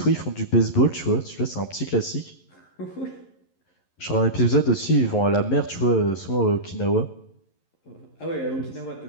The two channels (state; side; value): late; right; 11 ms